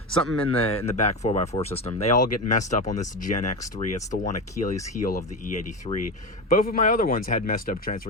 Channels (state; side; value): normal; both; correlation 0.20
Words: Something in the back 4x4 system. They all get messed up on this Gen X3. It's the one Achilles heel of the E83. Both of my other ones had messed up